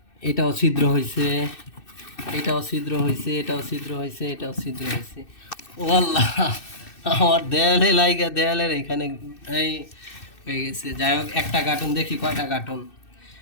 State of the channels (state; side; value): late; right; 2.6 ms